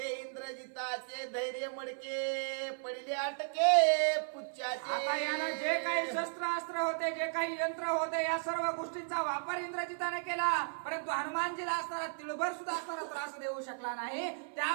इंद्रजिताचे धैर्य मडके पडले अटके पुच्छाचे. आता यानं जे काही शस्त्र अस्त्र होते, जे काही यंत्र होते, या सर्व गोष्टींचा वापर इंद्रजिताने केला, परंतु हनुमानजीला असणारा तिळभर सुद्धा असणारा त्रास देऊ शकला नाही.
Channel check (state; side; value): silent; left; 54 dB below the other